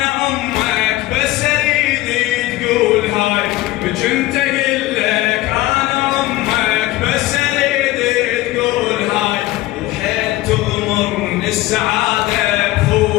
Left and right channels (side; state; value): right; quieter; 17.3 dB